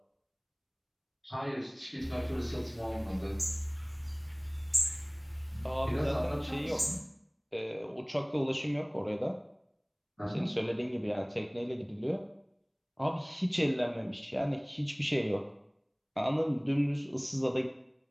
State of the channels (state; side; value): identical; both; correlation 1.00